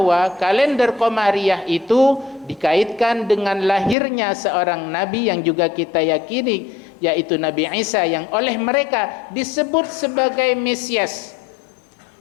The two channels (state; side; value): drops out; right; at 4.0 s